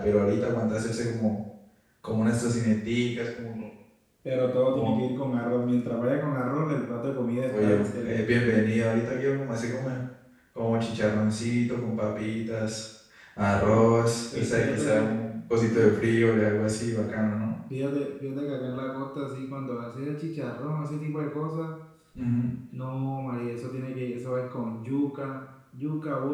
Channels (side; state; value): both; identical; correlation 1.00